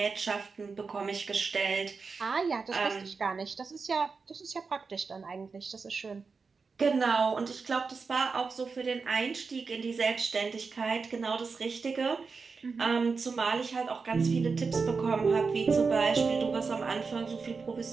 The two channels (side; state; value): left; quieter; 4.8 dB